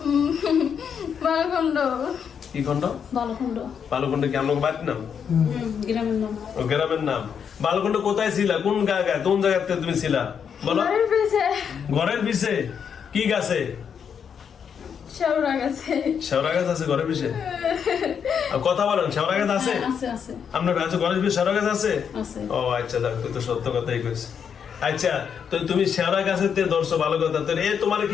বালখণ্ড কি খন্ড বালকুণ্ড বালুকুণ্ড কি আমার বাড়ির নাম গ্রামের নাম। ও গ্রামের নাম বালুকুণ্ড কোথায় ছিলা কোন জায়গায় কোন জায়গাতে তুমি ছিলা বলো বাড়ির পিছে ঘরের পিছে কি গাছে শেওড়া গেছে শেওড়া গাছ আছে ঘরের পিছে আর কথা বলেন শেওড়া গাছ আছে আছে আপনার কাছে ঘরের পিছে শেওড়া গাছ আছে আছে। ও আচ্ছা দেখ তুই তো সত্য কথাই কইস আচ্ছা তো তুমি শেওড়া গাছের তে ধরছো ভালো কথা তো এ তোমার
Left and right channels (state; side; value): quieter; right; 7.4 dB